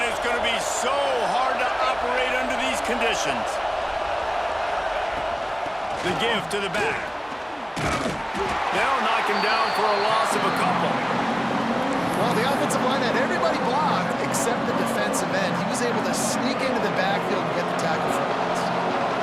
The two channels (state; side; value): identical; both; correlation 1.00